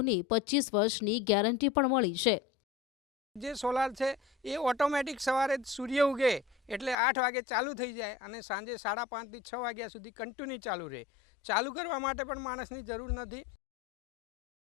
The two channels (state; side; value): drops out; right; at 7.0 s